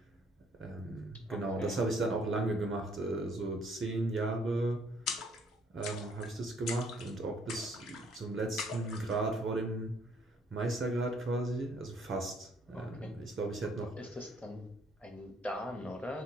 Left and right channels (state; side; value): normal; both; correlation 0.64